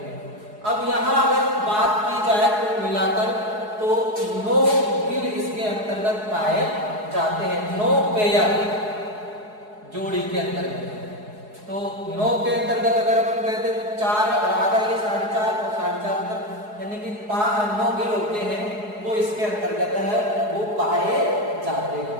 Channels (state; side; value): late; left; 4.8 ms